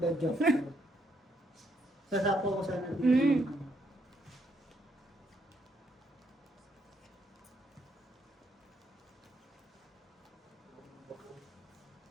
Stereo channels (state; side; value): normal; both; correlation 0.74